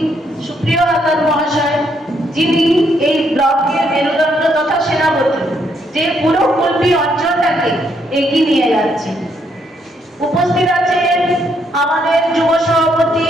সুপ্রিয় আকাশ মহাশয়, যিনি এই ব্লকের মেরুদণ্ড তথা সেনাপতি, যে পুরো কুলপি অঞ্চলটাকে এগিয়ে নিয়ে যাচ্ছে। উপস্থিত আছেন আমাদের যুব সভাপতি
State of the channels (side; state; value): both; normal; correlation 0.73